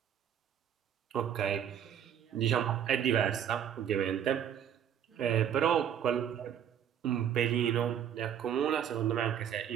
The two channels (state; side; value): quieter; left; 9.3 dB